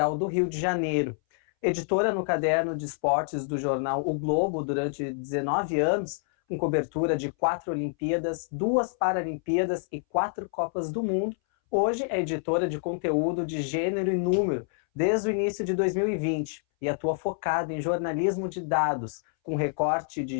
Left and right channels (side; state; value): right; silent; 60 dB below the other